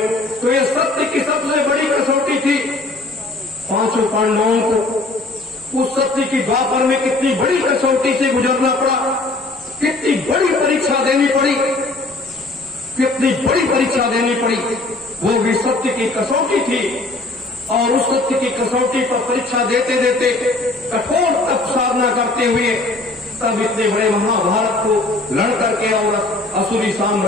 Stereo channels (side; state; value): right; quieter; 3.0 dB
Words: तो ये सत्य की सबसे बड़ी कसौटी थी। 5 पांडवों को उस सत्य की द्वापर में कितनी बड़ी कसौटी से गुजरना पड़ा, कितनी बड़ी परीक्षा देनी पड़ी, कितनी बड़ी परीक्षा देनी पड़ी। वो भी सत्य की कसौटी थी, और उस सत्य की कसौटी पर परीक्षा देते देते कठोर तप साधना करते हुए तब इतने बड़े महाभारत को लड़ करके और असुरी